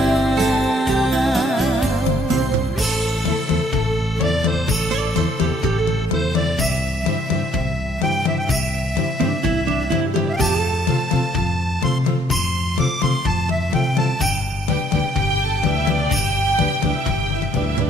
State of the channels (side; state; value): both; normal; correlation 0.67